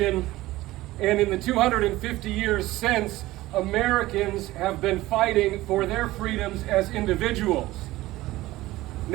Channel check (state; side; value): quieter; left; 17.5 dB